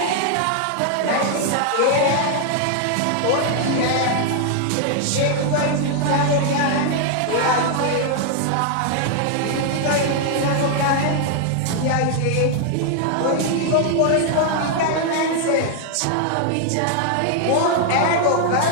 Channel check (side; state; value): both; different; correlation 0.00